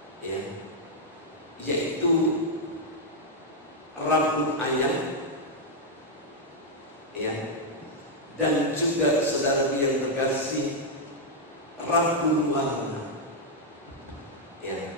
ya, yaitu rambut ayam, ya, dan juga saudara yang terkasih rambut warna, ya,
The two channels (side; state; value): both; normal; correlation -0.03